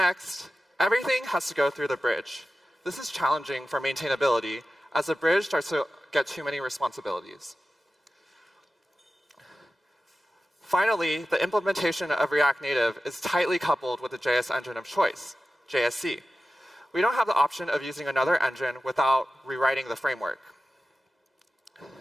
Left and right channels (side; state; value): both; normal; correlation 0.94